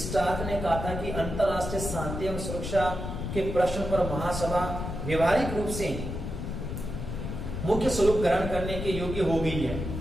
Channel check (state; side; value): noise; left; rumble, 5 dB below the sound